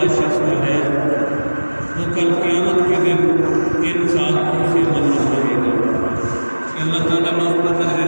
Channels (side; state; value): both; inverted; correlation -1.00